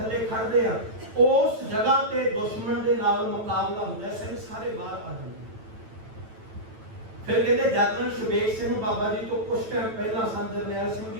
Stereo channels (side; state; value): left; late; 9.1 ms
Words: ਖੜਦੇ ਆ, ਉਸ ਜਗ੍ਹਾ ਤੇ ਦੁਸ਼ਮਣ ਦੇ ਨਾਲ ਮੁਕਾਬਲਾ ਹੁੰਦਾ। ਸਿੰਘ ਸਾਰੇ ਬਾਹਰ ਆ ਜਾਂਦੇ। ਫਿਰ ਕਹਿੰਦੇ ਜਰਨਲ ਸ਼ੁਬੇਗ ਸਿੰਘ ਬਾਬਾ ਜੀ ਤੋਂ ਕੁਝ ਟਾਈਮ ਪਹਿਲਾਂ, ਸੰਤ ਜਰਨੈਲ ਸਿੰਘ